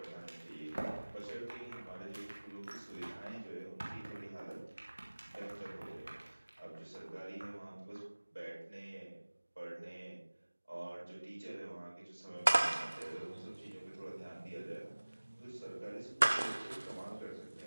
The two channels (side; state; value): both; inverted; correlation -1.00